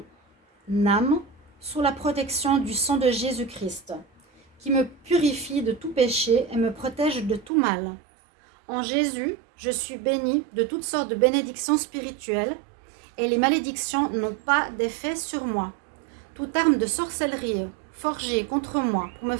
âme sous la protection du sang de Jésus-Christ, qui me purifie de tout péché et me protège de tout mal. En Jésus, je suis bénie de toutes sortes de bénédictions spirituelles et les malédictions n'ont pas d'effet sur moi. Toute arme de sorcellerie forgée contre moi pour me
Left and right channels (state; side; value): drops out; left; at 7.5 s